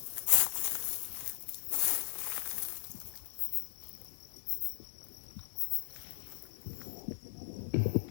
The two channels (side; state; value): right; silent; digital silence